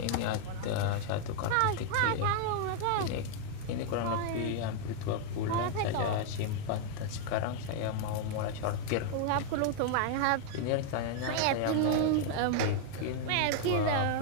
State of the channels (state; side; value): different; both; correlation 0.00